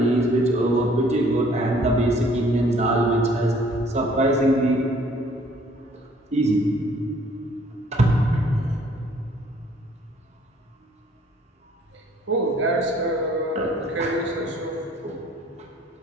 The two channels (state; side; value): normal; both; correlation 0.59